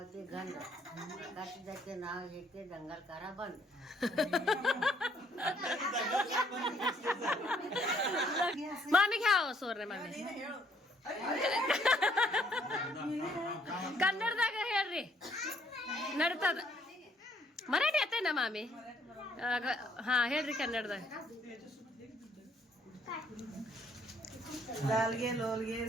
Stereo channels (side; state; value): both; normal; correlation 0.65